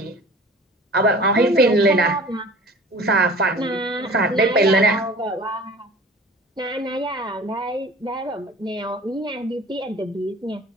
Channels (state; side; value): normal; both; correlation 0.43